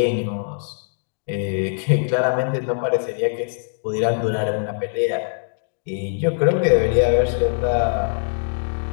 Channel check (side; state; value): right; silent; digital silence